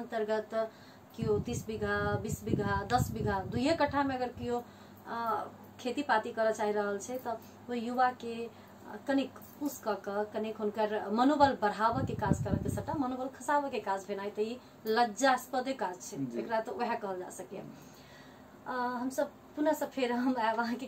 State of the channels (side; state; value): both; identical; correlation 1.00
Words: कियो 30 बीघा 20 बीघा 10 बीघा 2 कट्ठा में अगर कियो खेती पाती कर चाह रहल छै, तो वो युवा के कनिक पुश क कनिक हुनकर मनोबल बढ़ावे के काज करे के, सबटा मनोबल खसावे के काज भेनाइ त ई लज्जास्पद काज छै, एकरा तो वह कहल जा सके। हम सब पुनः से फिर हम वहाँ के